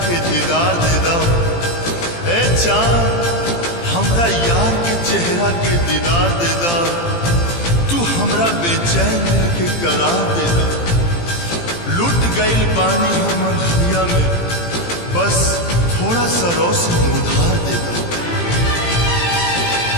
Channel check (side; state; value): right; late; 18 ms